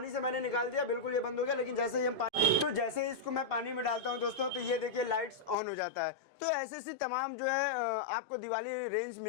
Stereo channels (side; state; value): right; drops out; at 5.6 s